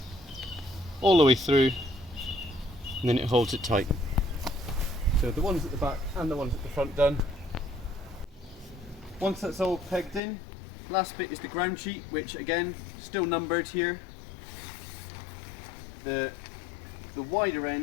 all the way through, and then it holds it tight. So the ones at the back and the ones at the front done. Once that's all pegged in, last bit is the ground sheet, which again, still numbered here. The wider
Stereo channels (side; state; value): right; drops out; at 10.2 s